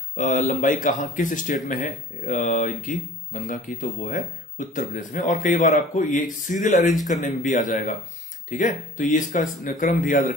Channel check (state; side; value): normal; both; correlation 0.47